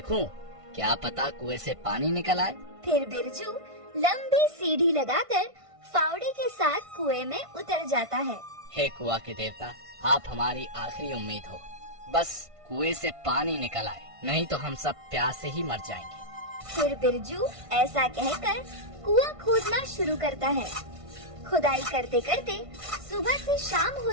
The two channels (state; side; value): late; left; 1.5 ms